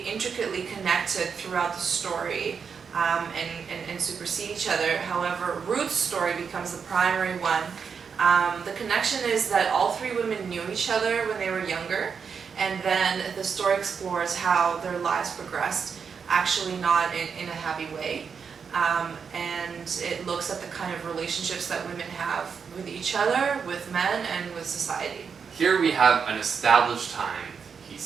intricately connected throughout the story and supersede each other. However, Ruth's story becomes the primary one. The connection is that all 3 women knew each other when they were younger, and then the story explores how their lives progressed, actually not in a happy way. And it looks at the kind of relationships that women have with each other, with men, and with society. Here we have an established time. He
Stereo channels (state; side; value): quieter; left; 6.2 dB